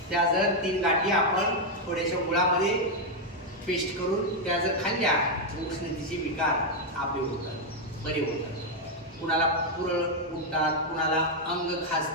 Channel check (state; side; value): normal; both; correlation 0.01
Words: त्या जर 3 गाठी आपण थोड्याशा गुळामध्ये पेस्ट करून त्या जर खाल्ल्या, उष्णतेचे विकार आपले होतात, बरे होतात। कुणाला पुरळ उठतात, कुणाला अंग